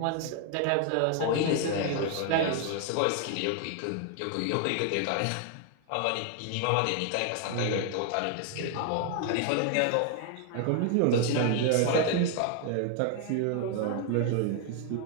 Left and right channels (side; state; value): both; different; correlation 0.00